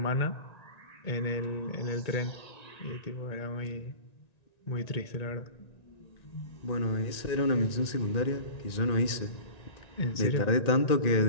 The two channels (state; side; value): late; right; 1.9 ms